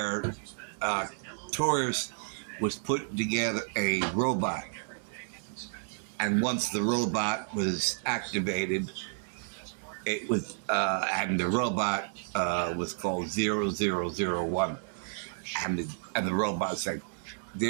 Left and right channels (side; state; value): left; silent; 57 dB below the other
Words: Taurus was putting together a robot. And once the robot was activated, it was, and the robot was called 0001. And the robot said,